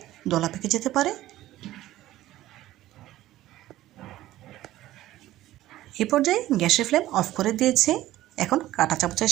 দলা পেকে যেতে পারে। এ পর্যায়ে গ্যাসের ফ্লেম অফ করে দিয়েছে। এখন কাঁটা চামচের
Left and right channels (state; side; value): quieter; left; 15.1 dB